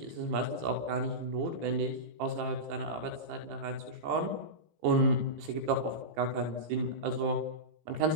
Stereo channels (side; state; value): left; late; 18 ms